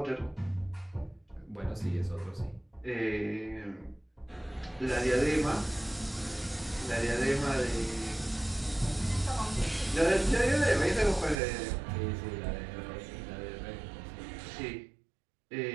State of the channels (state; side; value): drops out; left; at 11.4 s